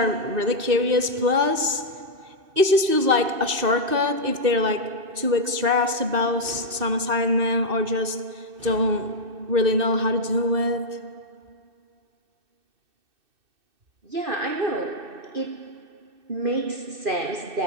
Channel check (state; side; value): late; left; 2.6 ms